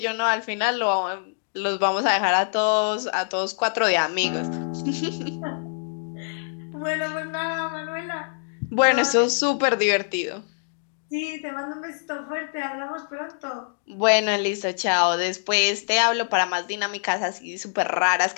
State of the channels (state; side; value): silent; right; digital silence